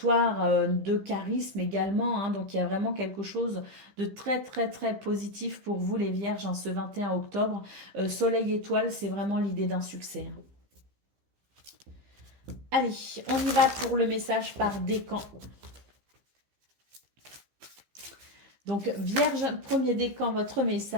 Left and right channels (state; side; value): late; left; 15 ms